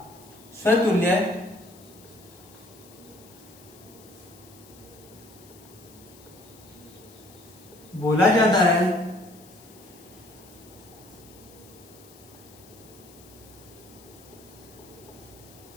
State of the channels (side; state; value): left; noise; hiss, 22 dB below the sound